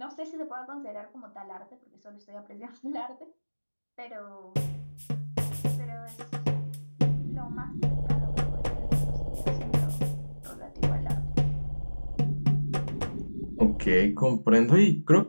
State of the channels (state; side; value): inverted; both; correlation -1.00